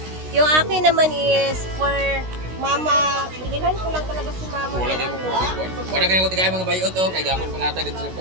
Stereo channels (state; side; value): late; left; 16 ms